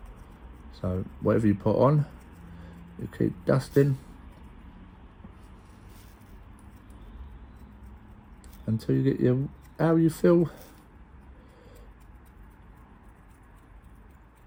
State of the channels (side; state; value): both; identical; correlation 1.00